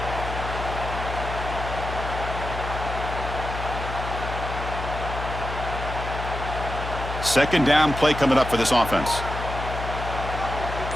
Second down play coming up for this offense.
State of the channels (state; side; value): noise; left; hum, 6 dB below the sound